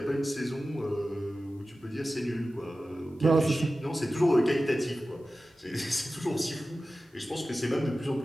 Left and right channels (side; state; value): both; normal; correlation 0.95